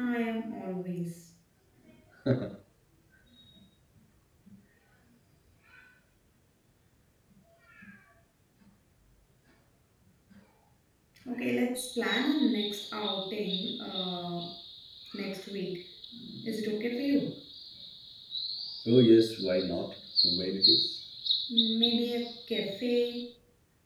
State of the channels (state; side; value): identical; both; correlation 1.00